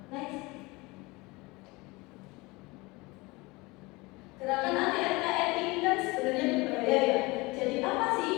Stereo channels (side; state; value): right; quieter; 23.7 dB